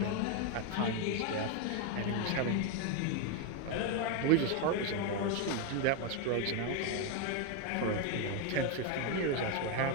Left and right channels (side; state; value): both; different; correlation 0.01